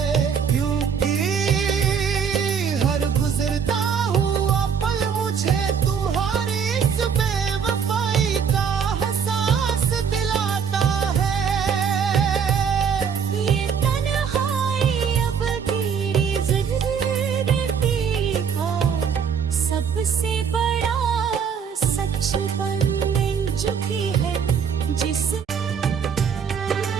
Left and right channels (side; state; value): left; quieter; 7.0 dB